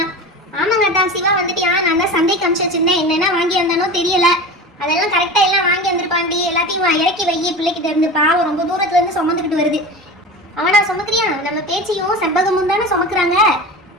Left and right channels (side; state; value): both; normal; correlation 0.30